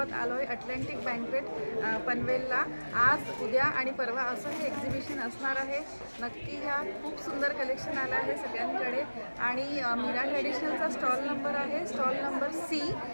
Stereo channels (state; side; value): inverted; both; correlation -1.00